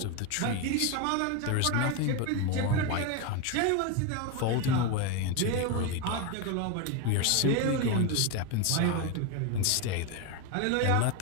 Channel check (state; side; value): different; both; correlation 0.02